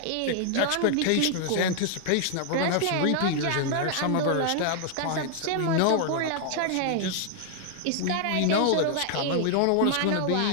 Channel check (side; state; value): both; different; correlation 0.00